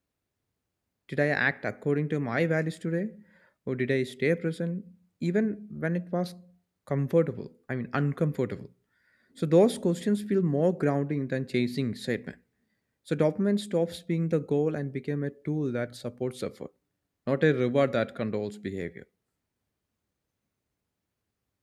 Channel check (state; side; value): identical; both; correlation 1.00